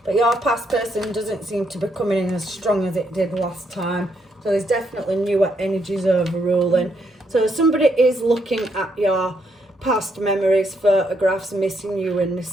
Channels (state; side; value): normal; both; correlation 0.76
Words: But your past person doesn't seem to be coming in as strong as it did last time. So there's definitely newer energies overruling. So somebody is looking at your past memories, photographs, missing you and